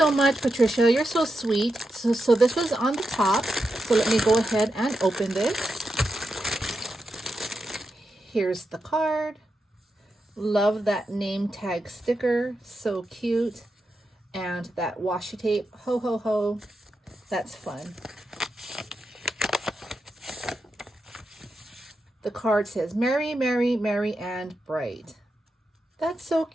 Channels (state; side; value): normal; both; correlation 0.87